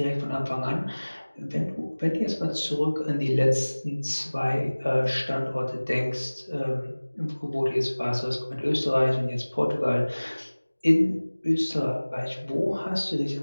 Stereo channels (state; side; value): inverted; both; correlation -1.00